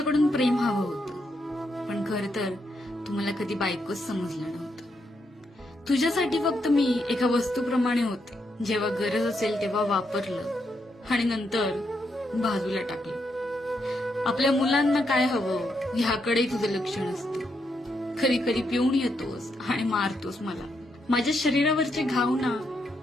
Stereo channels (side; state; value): both; normal; correlation 0.80